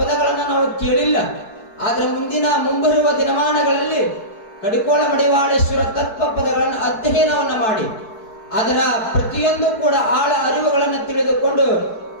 ನಾವು ಕೇಳಿಲ್ಲ. ಆದ್ರೆ ಮುಂಬರುವ ದಿನಮಾನಗಳಲ್ಲಿ ಕಡಿಕೋಳ ಮಡಿವಾಳೇಶ್ವರ ತತ್ವ ಪದಗಳನ್ನು ಅಧ್ಯಯನವನ್ನ ಮಾಡಿ ಅದರ ಪ್ರತಿಯೊಂದು ಕೂಡ ಆಳ ಅರಿವುಗಳನ್ನು ತಿಳಿದುಕೊಂಡು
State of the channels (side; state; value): right; late; 4.6 ms